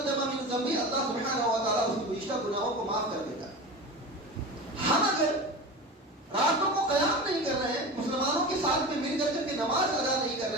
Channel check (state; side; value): normal; both; correlation 0.29